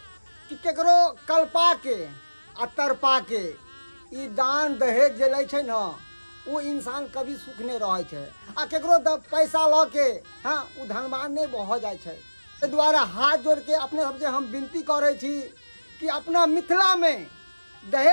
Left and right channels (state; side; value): inverted; both; correlation -1.00